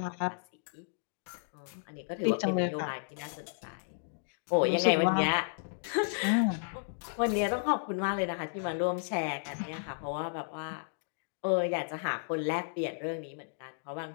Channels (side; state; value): right; silent; digital silence